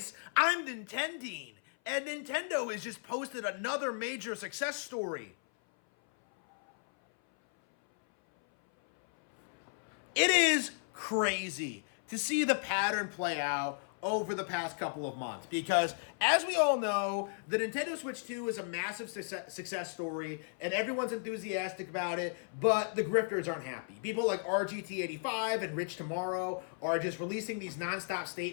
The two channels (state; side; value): silent; right; 55 dB below the other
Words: I'm Nintendeen, and Nintendo has just posted another major success story. It is crazy to see the pattern play out over the past couple of months because, as we all know, the Nintendo Switch 2 is a massive success story and everyone's enthusiastic about it, but the grifters aren't happy. People like RGT85 and Rich Tomorrow are just releasing these nonstop